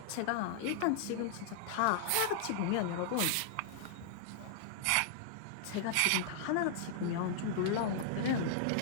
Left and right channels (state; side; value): different; both; correlation -0.01